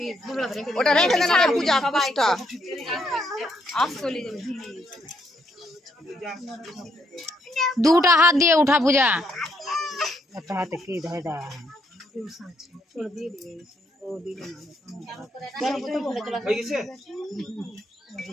ওটা রেখে দেন আগে পূজা পুষ্টা দুটা হাত দিয়ে উঠা পূজা। একটা হাতে কি ধরে দেওয়া হয়ে গেছে।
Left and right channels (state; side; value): normal; both; correlation 0.74